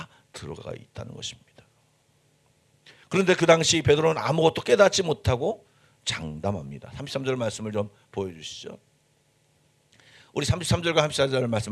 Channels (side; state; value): both; identical; correlation 1.00